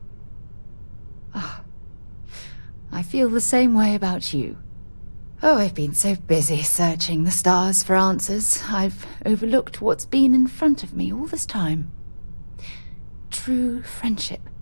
I feel the same way about you. Oh, I've been so busy searching the stars for answers, I've overlooked what's been in front of me all this time. True friendship.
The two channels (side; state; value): both; inverted; correlation -1.00